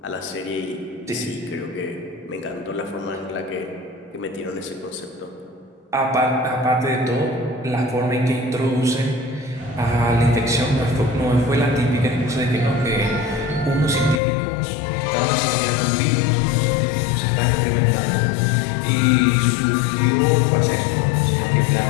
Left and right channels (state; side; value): drops out; right; at 14.2 s